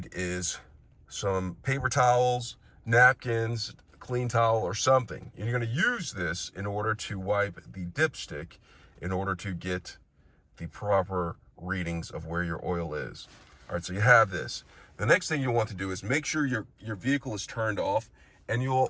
is some paper towels, napkins, clean towel, or something. And you're going to use this in order to wipe the dipstick in order to get the proper readings of where your oil is. All right, so you have this. The next thing you want to do is make sure your vehicle is turned off, and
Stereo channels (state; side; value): identical; both; correlation 1.00